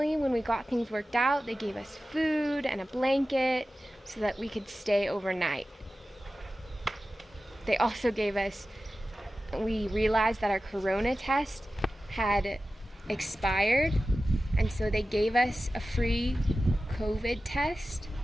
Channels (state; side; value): normal; both; correlation 0.95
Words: when we got things worked out, they gave us food and a blanket so that we could stay overnight. They also gave us, we realized that our corona test had expired, and so they gave us a free COVID test.